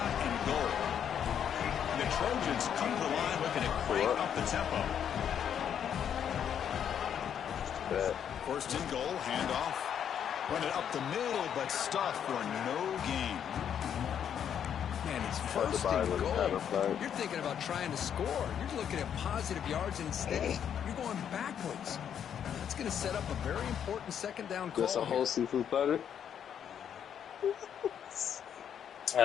and goal. The Trojans come to the line looking to crank up the tempo. 1st and goal, handoff. Run it up the middle, but stuffed for no gain. Man, It's first and goal. You're thinking about trying to score. You're looking at positive yards, and instead you're going backwards. That's going to set up a very important second down call. Just a whole seafood platter.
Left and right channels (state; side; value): quieter; right; 8.7 dB